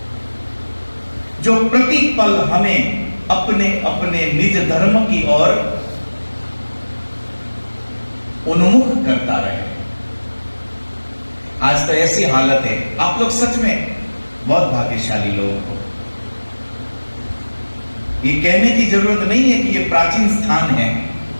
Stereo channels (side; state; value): both; inverted; correlation -1.00